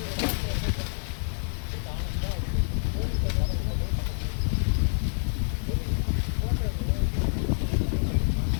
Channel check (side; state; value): right; silent; digital silence